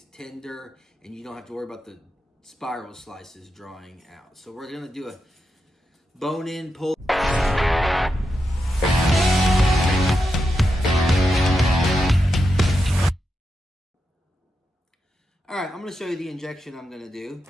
tender, and you don't have to worry about the spiral slices drawing out. So we're going to do a bone-in pulled. Alright, I'm going to show you the injection I'm going to do.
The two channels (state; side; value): normal; both; correlation 0.87